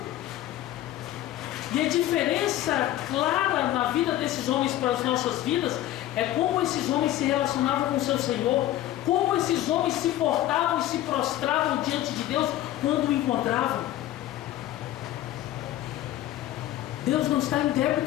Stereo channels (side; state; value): right; quieter; 13.9 dB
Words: E a diferença clara na vida desses homens para as nossas vidas é como esses homens se relacionavam com o seu Senhor, como esses homens se portavam e se prostravam diante de Deus quando o encontravam. Deus não está em